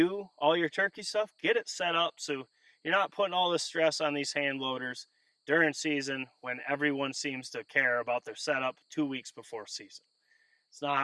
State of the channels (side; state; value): both; identical; correlation 1.00